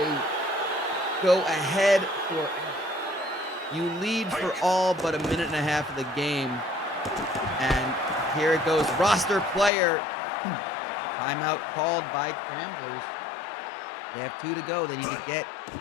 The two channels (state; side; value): drops out; right; at 9.7 s